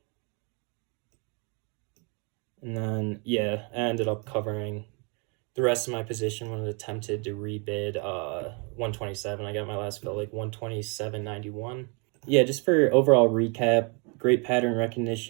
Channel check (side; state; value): left; quieter; 34.1 dB